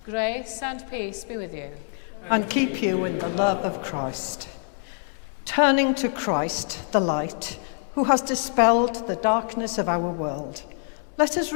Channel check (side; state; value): right; silent; 61 dB below the other